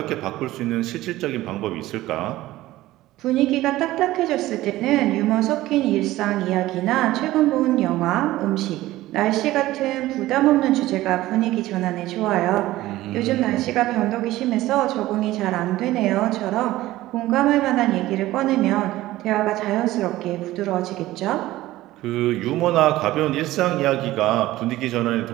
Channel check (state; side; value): quieter; left; 16.4 dB